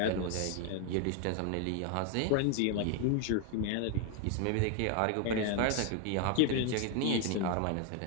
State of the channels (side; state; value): both; different; correlation 0.01